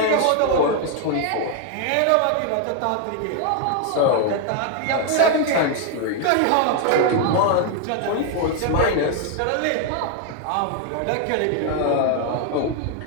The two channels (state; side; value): different; both; correlation 0.00